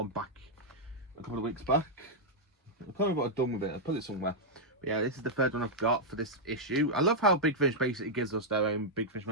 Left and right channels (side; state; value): both; normal; correlation -0.05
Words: back a couple of weeks back. I can't remember what I've done with it. I put it somewhere. But yeah, this is the 3rd one I've got for this issue. I love how Big Finish basically gives us their own Big Finish